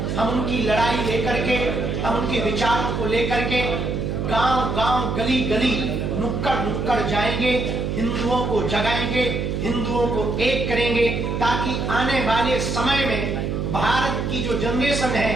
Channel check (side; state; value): right; noise; hum, 2 dB below the sound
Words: हम उनकी लड़ाई लेकर के, हम उनके विचारों को लेकर के गांव गांव, गली गली, नुक्कड़ नुक्कड़ जाएंगे, हिंदुओं को जगाएंगे, हिंदुओं को एक करेंगे, ताकि आने वाले समय में भारत की जो जनरेशन